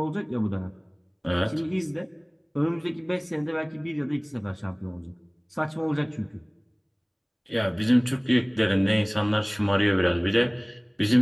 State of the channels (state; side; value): identical; both; correlation 1.00